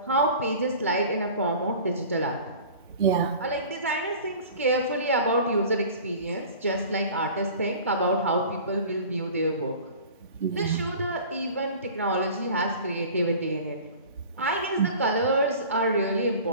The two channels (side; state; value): both; inverted; correlation -0.42